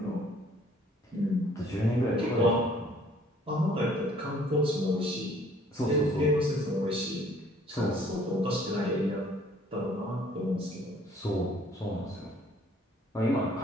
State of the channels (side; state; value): both; normal; correlation 0.57